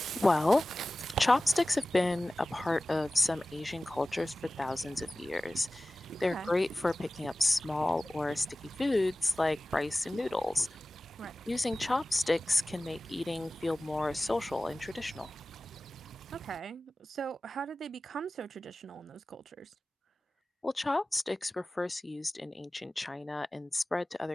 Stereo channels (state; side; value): normal; both; correlation 0.97